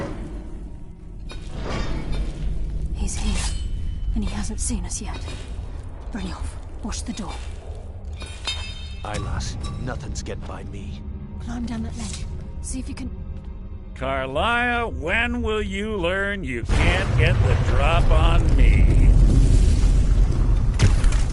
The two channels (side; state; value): both; identical; correlation 1.00